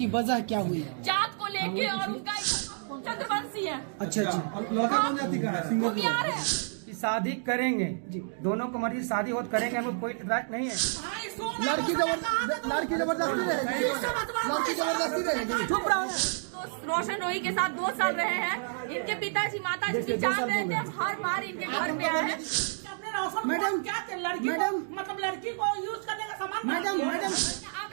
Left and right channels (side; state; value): left; silent; digital silence